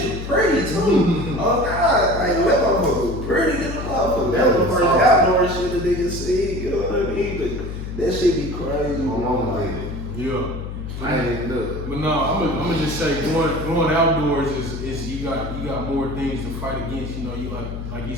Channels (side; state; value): left; noise; hum, 7 dB below the sound